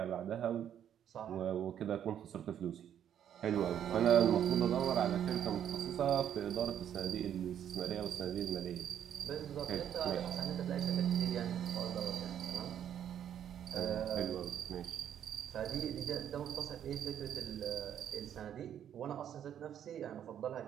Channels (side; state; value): left; quieter; 9.8 dB